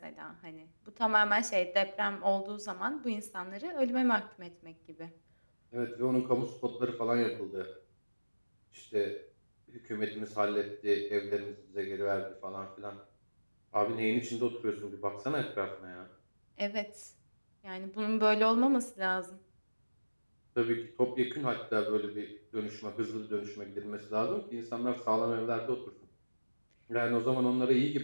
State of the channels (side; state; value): both; inverted; correlation -1.00